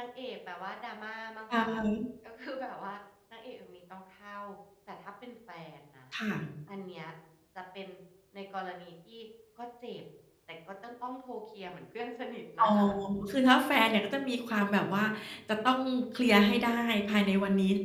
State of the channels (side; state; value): both; identical; correlation 1.00